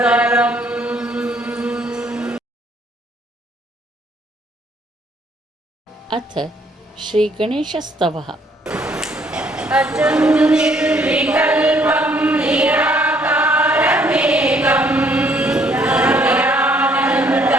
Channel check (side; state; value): both; normal; correlation 0.65